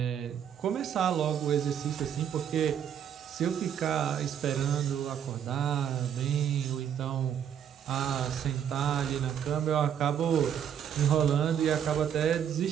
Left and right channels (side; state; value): left; quieter; 8.9 dB